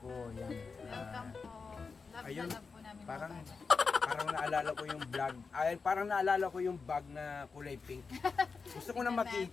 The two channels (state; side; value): quieter; right; 4.8 dB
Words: Ayan. Ayun, parang naalala ko yung vlog. Ay, parang naalala ko yung bag na kulay pink. Gusto ko na makita.